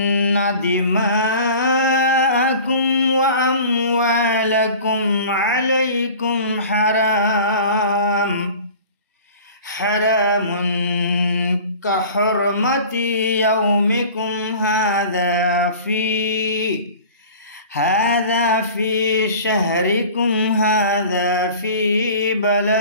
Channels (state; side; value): inverted; both; correlation -0.41